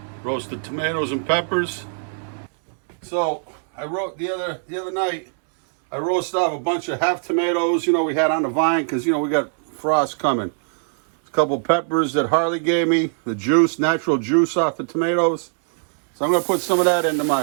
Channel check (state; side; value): silent; left; digital silence